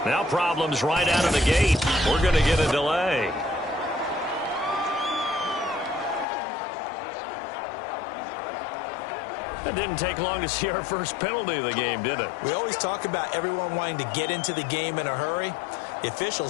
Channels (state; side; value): drops out; right; at 6.2 s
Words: Now problems right out of the gate. We're going to get a delay. It didn't take long to see our first penalty of the game, did it? We always talk about everyone wanting to get into the game in a hurry. The